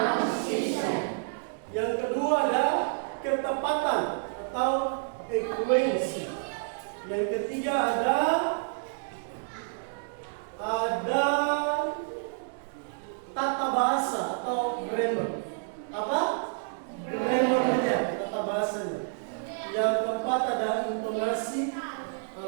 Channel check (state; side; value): silent; left; digital silence